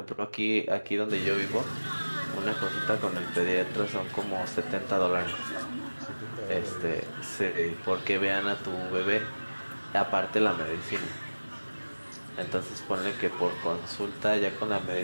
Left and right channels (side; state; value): both; inverted; correlation -1.00